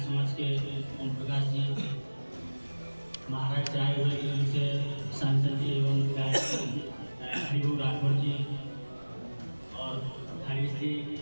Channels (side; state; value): both; inverted; correlation -1.00